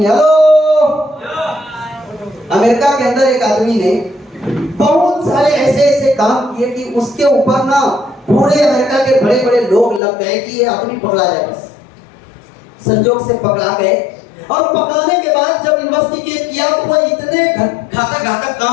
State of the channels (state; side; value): drops out; right; at 10.0 s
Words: अमेरिका के अंदर एक आदमी ने बहुत सारे ऐसे ऐसे काम किए कि उसके ऊपर ना पूरे अमेरिका के बड़े बड़े लोग लग गए कि ये आदमी पकड़ा जाए। बस संजोग से पकड़ा गए, और पकड़ाने के बाद जब इन्वेस्टिगेट किया तो वो इतने घातक घातक